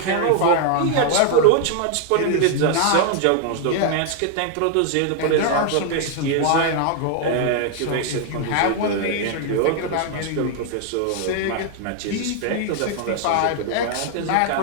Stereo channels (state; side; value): different; both; correlation 0.00